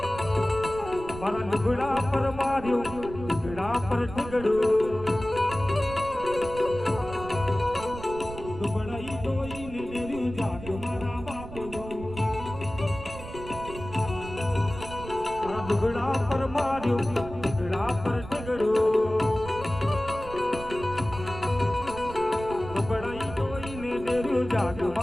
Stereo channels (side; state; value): right; noise; rumble, 12 dB below the sound